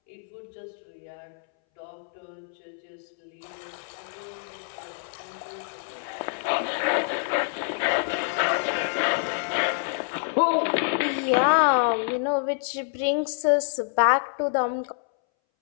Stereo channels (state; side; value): silent; right; 60 dB below the other